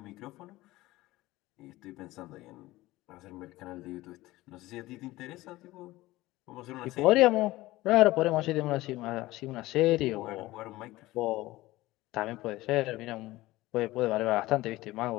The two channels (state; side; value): quieter; right; 18.3 dB